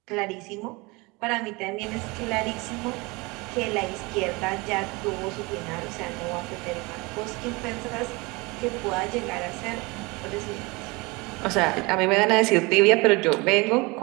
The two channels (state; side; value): quieter; left; 25.4 dB